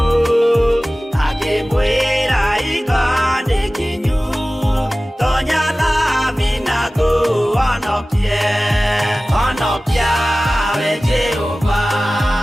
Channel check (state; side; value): normal; both; correlation 0.97